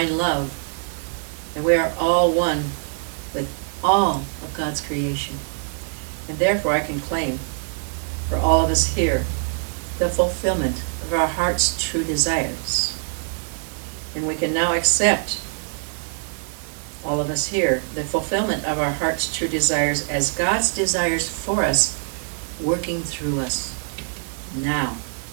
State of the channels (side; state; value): left; silent; 61 dB below the other